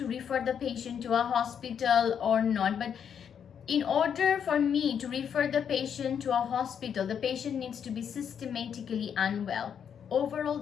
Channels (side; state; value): right; quieter; 7.9 dB